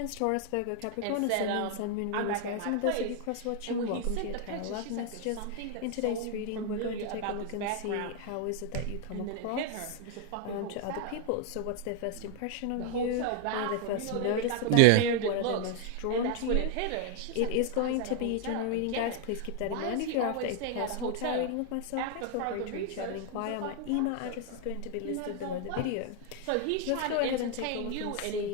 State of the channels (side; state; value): both; different; correlation 0.00